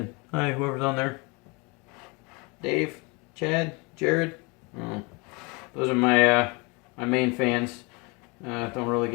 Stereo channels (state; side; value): quieter; right; 28.6 dB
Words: Hi, whoever's on there. Dave, Chad, Jared. Oh, those are my my main fans. Don't really